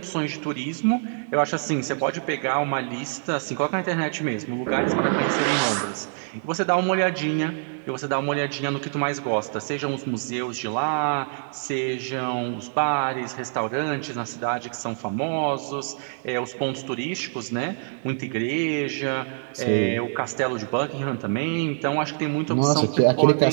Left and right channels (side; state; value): left; silent; digital silence